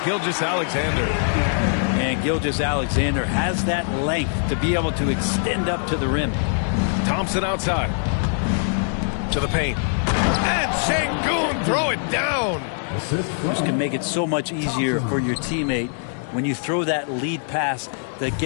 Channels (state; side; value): silent; right; digital silence